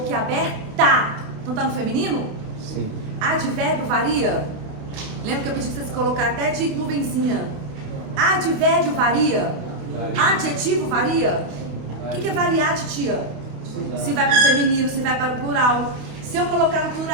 Então tá no feminino? Sim. Advérbio varia? Lembra que eu pedi que vocês colocaram até de nuvenzinha? Advérbio varia? Adjetivo varia? O que é variar, titia? Se vai para o feminino, se vai para o plural. Se eu colocar no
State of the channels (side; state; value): left; late; 28 ms